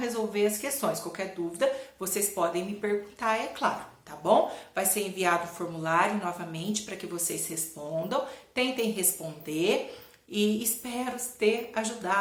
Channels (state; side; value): identical; both; correlation 1.00